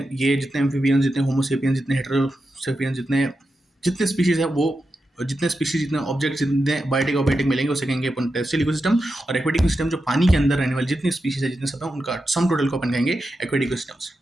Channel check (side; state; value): both; normal; correlation 0.89